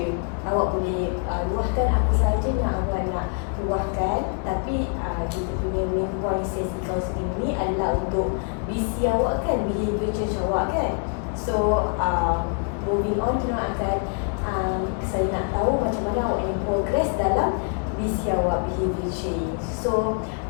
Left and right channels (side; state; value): right; quieter; 39.9 dB